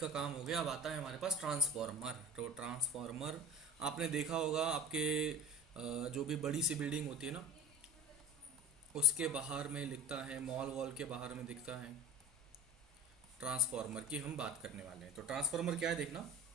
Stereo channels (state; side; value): normal; both; correlation 0.34